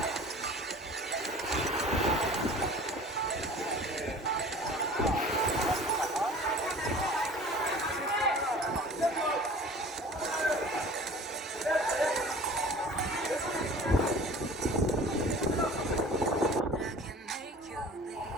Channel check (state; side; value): normal; both; correlation 0.44